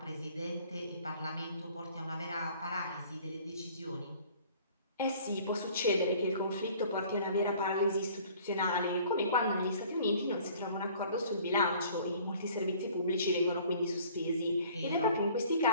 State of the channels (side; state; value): both; inverted; correlation -0.52